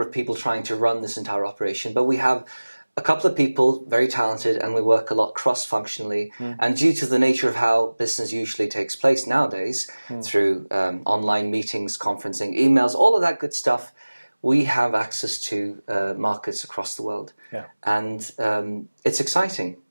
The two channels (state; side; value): inverted; both; correlation -1.00